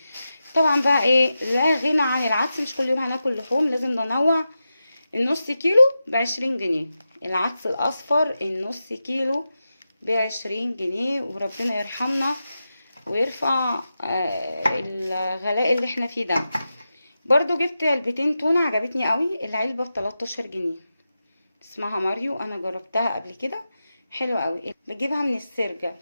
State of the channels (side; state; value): both; inverted; correlation -0.91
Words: طبعا بقى ايه، لا غنى عن العدس، مش كل يوم هناكل لحوم، لازم ننوع. النص كيلو ب20 جنيه، العدس الأصفر النص كيلو ب20 جنيه. وربنا يرحمنا ويرفع الغلاء اللي احنا فيه ده. برضو جبت علبتين تونة عجبتني قوي، العلبة ب13 جنيه، اسمها ماريو، انا جربتها قبل كده، حلوة قوي. بجيبها من السرجة،